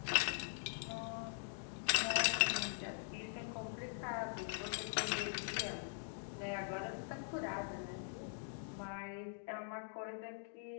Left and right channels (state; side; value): silent; right; digital silence